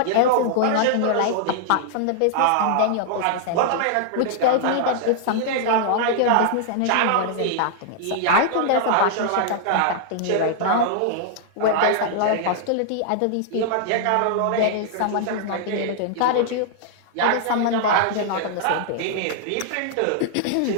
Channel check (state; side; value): different; both; correlation -0.01